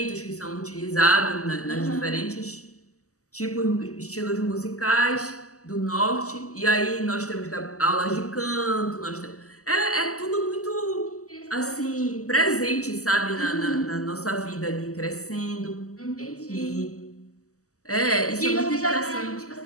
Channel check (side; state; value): right; late; 0.66 ms